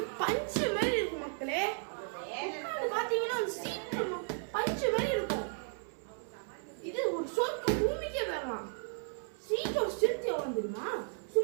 பஞ்சு மாதிரி இருக்கும் மக்களே. பாத்தீங்கன்னா சீட்டு பஞ்சு மாதிரி இருக்கும். இது ஒரு சொர்க்க பூமிக்கே வரலாம். சீட்டோட ஸ்ட்ரென்த் எவ்வளவு தெரியுமா?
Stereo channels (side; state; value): left; silent; 55 dB below the other